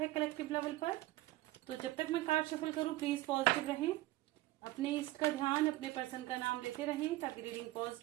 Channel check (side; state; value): left; quieter; 17.3 dB